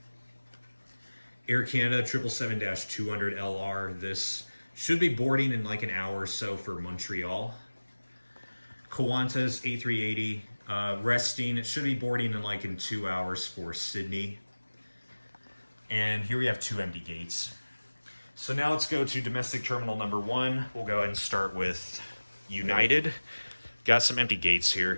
Air Canada 777-200LR. This should be boarding in like an hour or so for Montreal. Qantas A380. Resting. It should be boarding in 2 hours for Sydney. And here we have 2 empty gates. So now let's go to domestic terminal number 1. We'll go ahead and start with United. Got some empty gates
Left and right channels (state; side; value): inverted; both; correlation -1.00